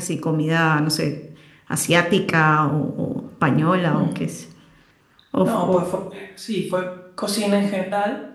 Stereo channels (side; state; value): both; identical; correlation 1.00